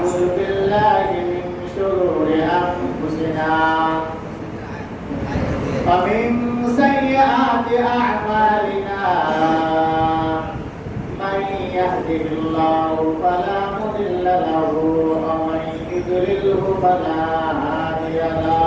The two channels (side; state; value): both; identical; correlation 1.00